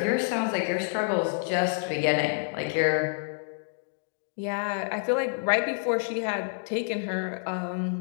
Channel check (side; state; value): right; silent; digital silence